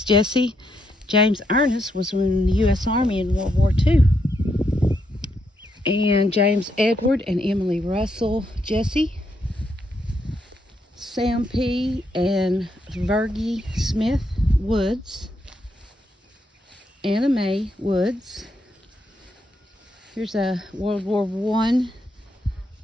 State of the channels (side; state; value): both; normal; correlation 0.78